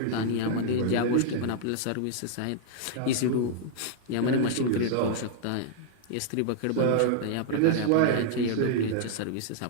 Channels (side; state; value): both; different; correlation -0.01